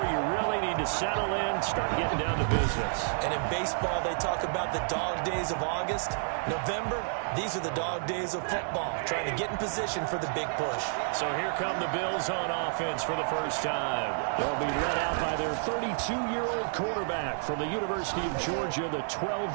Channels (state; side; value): silent; left; 58 dB below the other